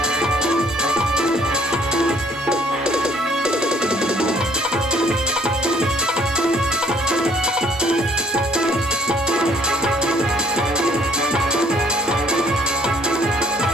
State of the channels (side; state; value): both; normal; correlation 0.60